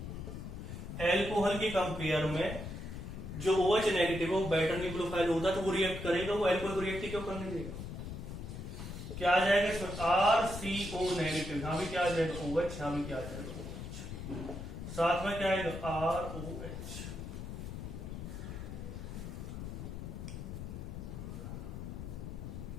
एल्कोहल के कंपेयर में जो OH नेगेटिव है वो बेटर न्यूक्लियोफाइल होता है, तो वो रिएक्ट करेगा, वो एल्कोहल को रिएक्ट क्यों करने देगा। क्या आ जाएगा इसमें, RCO नेगेटिव, यहां भी क्या आ जाएगा OH, यहां भी क्या आ जाएगा OH, साथ में क्या आएगा ROH।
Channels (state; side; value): noise; left; rumble, 7 dB below the sound